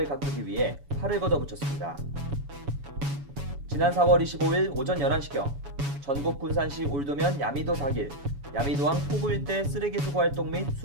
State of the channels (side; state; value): left; late; 7.1 ms